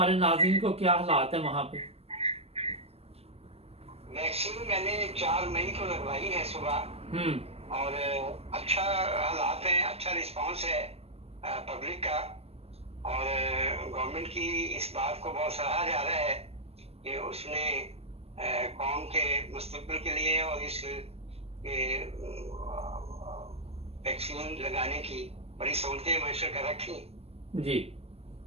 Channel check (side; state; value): left; late; 0.29 ms